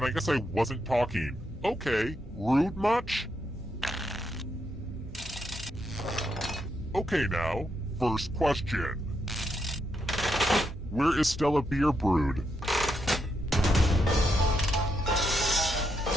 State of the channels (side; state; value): both; normal; correlation 0.80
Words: I guess I wasn't talking. Okay, rude much? Okay now, first question. Where is Stella beer brewed?